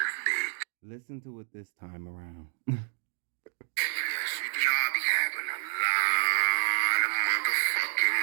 bitch. Listen to it this time around. Yes, you do. Y'all be having a lot of motherfucking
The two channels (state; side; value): silent; left; digital silence